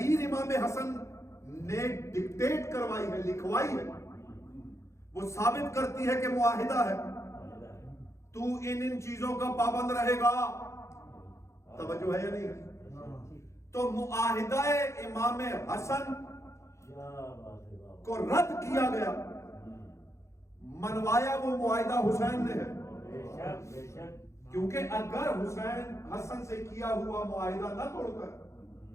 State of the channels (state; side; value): late; right; 0.14 ms